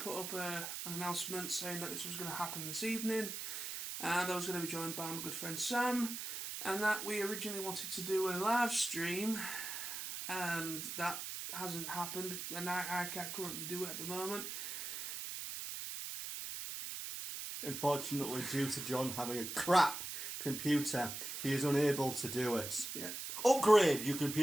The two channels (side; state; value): right; noise; hiss, 5 dB below the sound